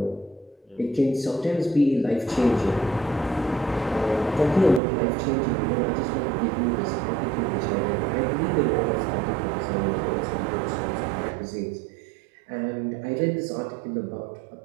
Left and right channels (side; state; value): left; drops out; at 4.8 s